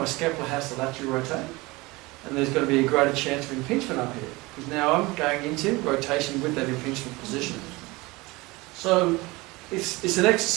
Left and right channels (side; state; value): left; quieter; 22.7 dB